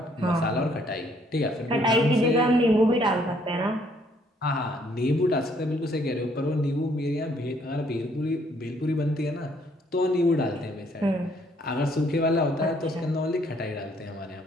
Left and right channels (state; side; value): normal; both; correlation 0.66